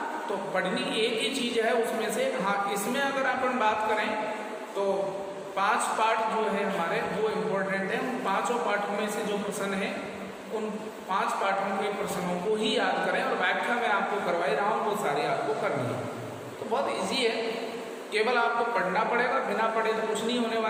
तो पढ़नी एक ही चीज है उसमें से। हाँ, इसमें अगर अपन बात करें तो 5 पार्ट जो है हमारे वो इम्पोर्टेंट है। उन 5 पार्टों में से जो प्रश्न है उन 5 पार्टों के प्रश्नों को ही याद करें और व्याख्या मैं आपको करवाई रहा हूँ वो सारी आपको करनी है। तो बहुत इजी है, केवल आपको पढ़ना पड़ेगा, बिना पढ़े तो कुछ नहीं होने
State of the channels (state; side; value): identical; both; correlation 1.00